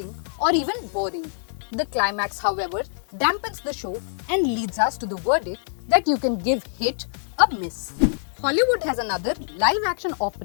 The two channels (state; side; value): silent; right; digital silence